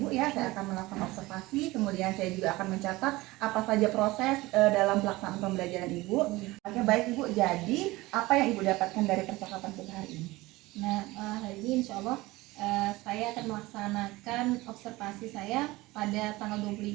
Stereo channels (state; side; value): quieter; left; 20.1 dB